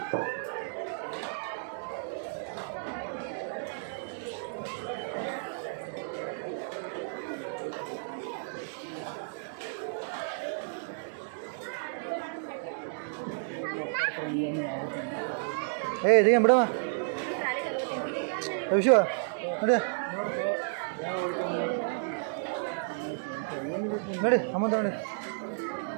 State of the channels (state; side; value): silent; left; digital silence